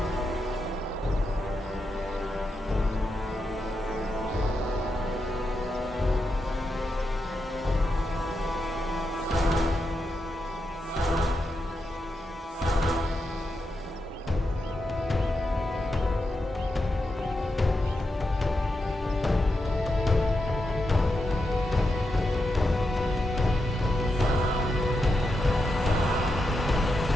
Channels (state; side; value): normal; both; correlation 0.86